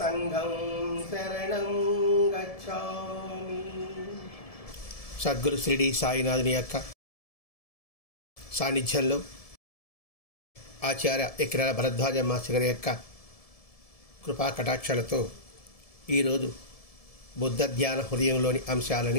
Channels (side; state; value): right; late; 1.7 ms